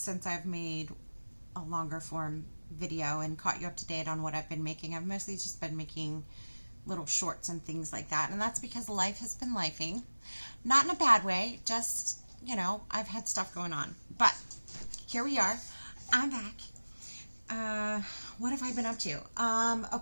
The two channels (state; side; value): inverted; both; correlation -1.00